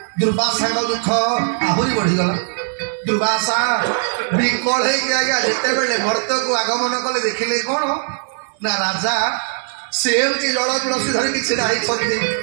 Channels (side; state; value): left; silent; digital silence